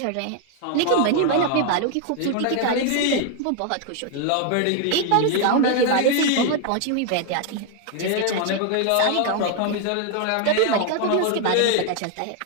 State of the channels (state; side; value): different; both; correlation 0.00